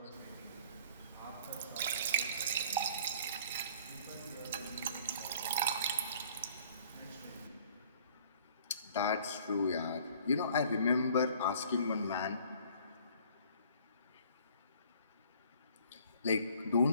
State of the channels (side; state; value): both; inverted; correlation -0.54